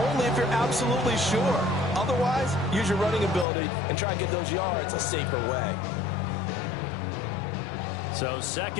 only if you're absolutely sure. Otherwise, use your running ability and try and get those yards a safer way. So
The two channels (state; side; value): drops out; right; at 3.5 s